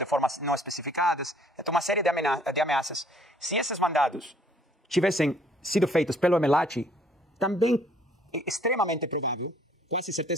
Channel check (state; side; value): normal; both; correlation 0.61